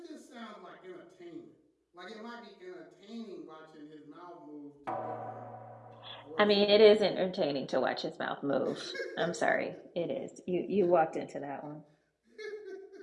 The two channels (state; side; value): identical; both; correlation 1.00